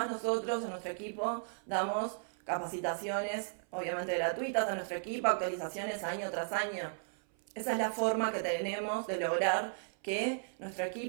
nosotros en nuestro equipo damos capacitaciones, obviamente gratuitas a nuestro equipo, actualizaciones año tras año. Esa es la forma que tenemos de lograr que nuestro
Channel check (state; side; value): silent; left; 54 dB below the other